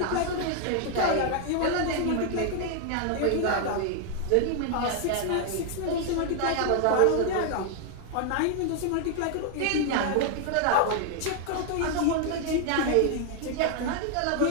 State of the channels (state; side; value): different; both; correlation 0.00